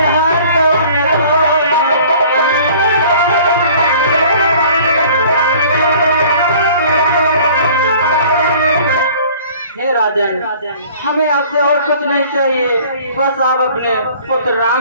हमें आपसे और कुछ नहीं चाहिए, बस आप अपने पुत्र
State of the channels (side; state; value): both; inverted; correlation -0.50